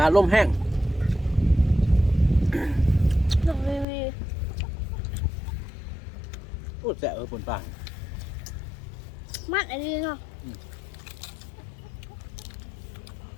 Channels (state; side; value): drops out; right; at 3.9 s